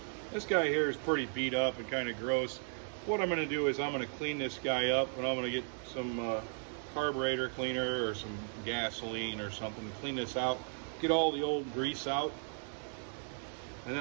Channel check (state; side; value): silent; left; 54 dB below the other